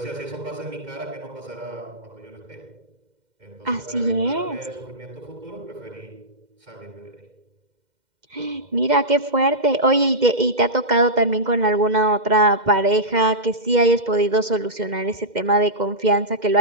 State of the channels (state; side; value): late; left; 2.1 ms